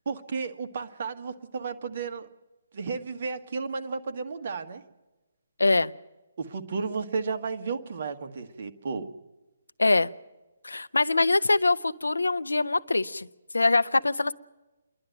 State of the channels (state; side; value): inverted; both; correlation -0.93